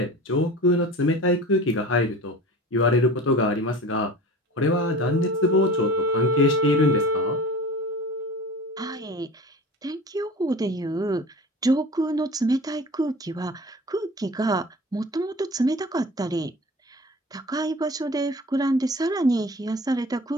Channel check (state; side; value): normal; both; correlation 0.38